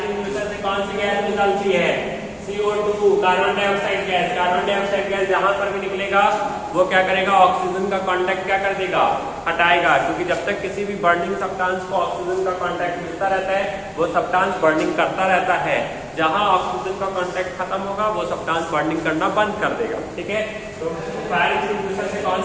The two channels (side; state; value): both; identical; correlation 1.00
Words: से कौन सी गैस निकलती है, CO2 CO2 carbon dioxide gas, carbon dioxide gas जहां पर भी निकलेगा वो क्या करेगा, ऑक्सीजन का कांटेक्ट क्या कर देगा, हटाएगा, क्योंकि जब तक किसी भी बर्निंग सब्सटेंस को ऑक्सीजन का कांटेक्ट मिलता रहता है वो सब्सटेंस बर्निंग करता रहता है। जहां ऑक्सीजन का कांटेक्ट खत्म होगा वो सब्सटेंस बर्निंग करना बंद कर देगा। ठीक है, तो फायर एक्सटिंग्विशर से